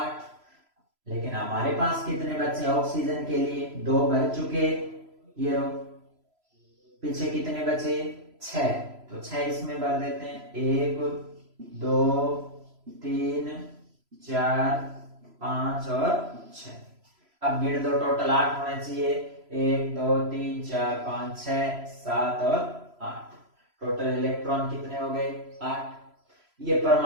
लेकिन हमारे पास कितने बचे ऑक्सीजन के लिए? 2 भर चुके। ये रो पीछे कितने बचे? 6। तो 6 इसमें भर देते हैं। 1 2 3 4 5 और 6। अब गिन दो, टोटल 8 होना चाहिए। 1 2 3 4 5 6 7 और 8। टोटल इलेक्ट्रॉन कितने हो गए? 8। ये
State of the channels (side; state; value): left; late; 3.0 ms